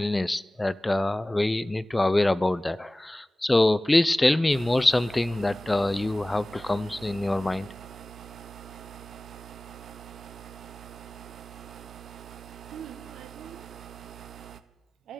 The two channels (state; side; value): normal; both; correlation 0.98